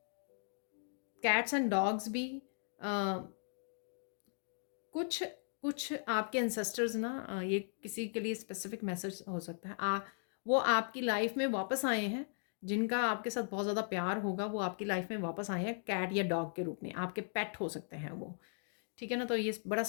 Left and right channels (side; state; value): right; silent; digital silence